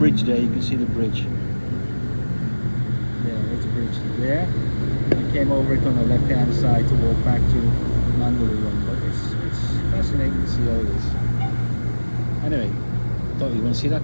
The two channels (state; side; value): inverted; both; correlation -1.00